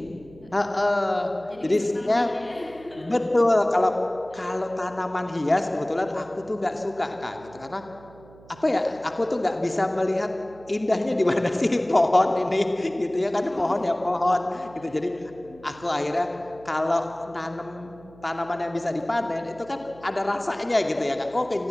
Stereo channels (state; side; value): noise; right; hum, 22 dB below the sound